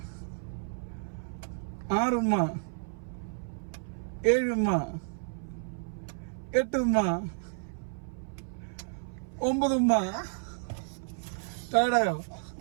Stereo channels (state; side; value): silent; left; 56 dB below the other